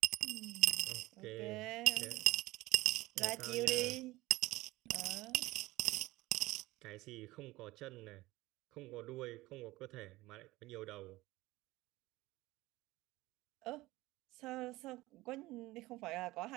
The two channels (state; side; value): quieter; left; 19.1 dB